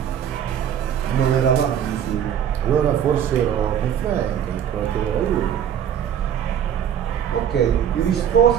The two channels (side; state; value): left; quieter; 9.1 dB